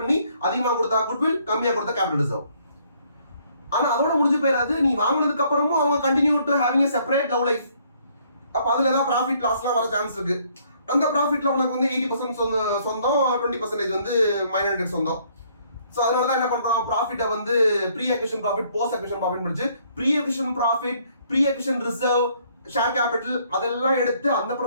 அதிகமாக கொடுத்தா குட்வில், கம்மியாக கொடுத்தா கேபிட்டல் ரிசர்வ். ஆனா அதோட முடிஞ்சு போயிடாது. நீ வாங்கினதுக்கு அப்புறமும் அவங்க continue to having a separate love life. அப்ப அதுல ஏதாவது ப்ராஃபிட் லாஸ்லாம் வர சான்ஸ் இருக்கு. அந்த ப்ராஃபிட்ல உனக்கு வந்து 80% சொந்தம், 20% வந்து மைனாரிட்டி சொந்தம். ஸோ அதனால தான் என்ன பண்றோம், ப்ராஃபிட்டை வந்து pre acquisition profit, post acquisition profit முடிச்சு pre acquisition profit, pre acquisition reserve, share capital அதெல்லாம் எடுத்து அந்த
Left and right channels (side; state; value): both; inverted; correlation -0.65